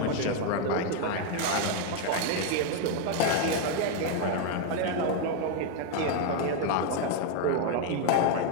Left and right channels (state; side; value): different; both; correlation 0.01